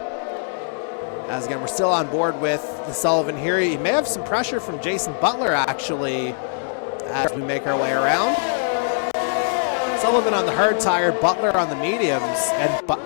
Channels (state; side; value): silent; right; digital silence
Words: As again, we're still on board with the Sullivan here. You may have some pressure from Jason Butler, actually, as we make our way around. Sullivan on the hard tire, Butler on the mediums, and